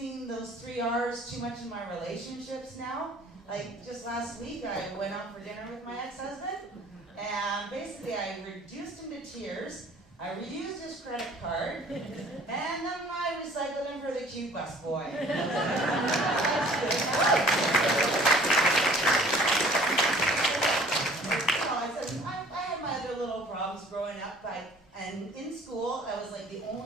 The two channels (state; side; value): normal; both; correlation 0.53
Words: those 3 R's too much in my relationships now. Like just last week, I went out for dinner with my ex-husband, and basically I reduced him to tears. I reused his credit card, and then I recycled him for the cute busboy. That's good. up, and in school, I was like the